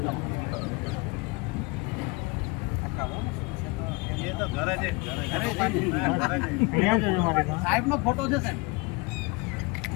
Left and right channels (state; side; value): quieter; right; 27.2 dB